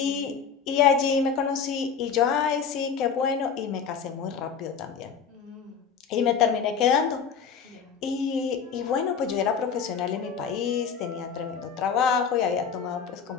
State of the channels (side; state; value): right; quieter; 6.6 dB